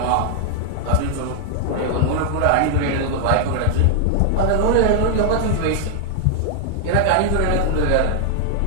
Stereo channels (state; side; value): different; both; correlation 0.00